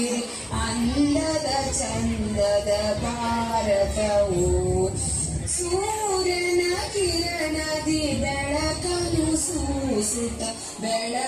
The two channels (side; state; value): both; identical; correlation 1.00